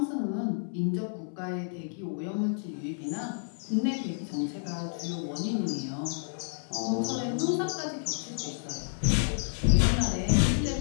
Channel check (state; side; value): silent; right; 58 dB below the other